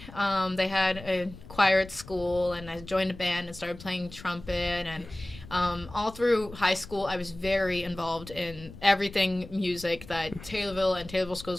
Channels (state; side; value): noise; left; rumble, 16 dB below the sound